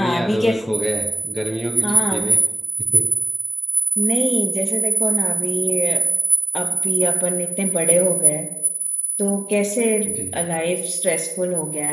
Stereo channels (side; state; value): both; normal; correlation 0.96